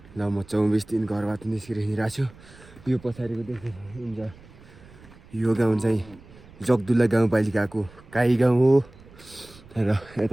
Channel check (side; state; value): right; noise; rumble, 23 dB below the sound